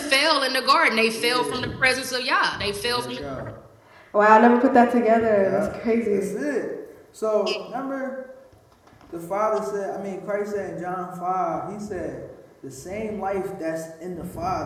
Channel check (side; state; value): both; identical; correlation 1.00